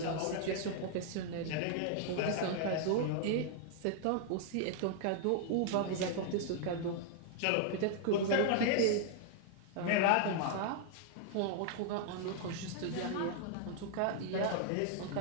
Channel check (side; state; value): both; different; correlation 0.00